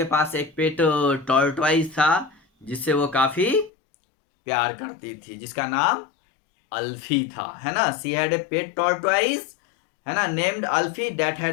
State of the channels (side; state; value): right; drops out; at 3.7 s